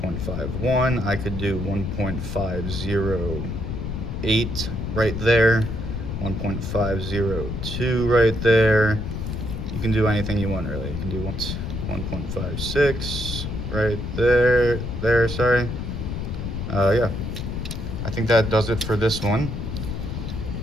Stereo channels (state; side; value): noise; left; rumble, 4 dB below the sound